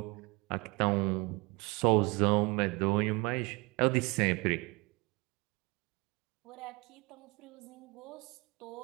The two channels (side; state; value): left; quieter; 26.3 dB